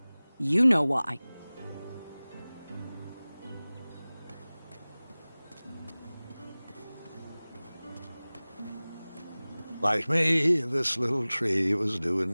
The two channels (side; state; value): both; inverted; correlation -0.99